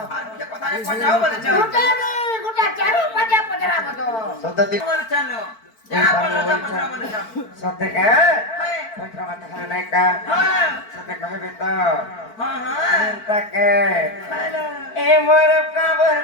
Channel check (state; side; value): late; right; 4.5 ms